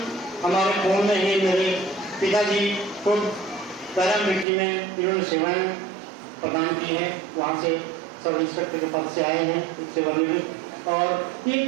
हमारे खून में ही। मेरे पिताजी खुद पैरामिलिट्री में इन्होंने सेवाएं प्रदान की हैं, वहाँ से सब इंस्पेक्टर के पद से आए हैं सेवानिवृत्त। और ये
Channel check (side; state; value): left; drops out; at 4.5 s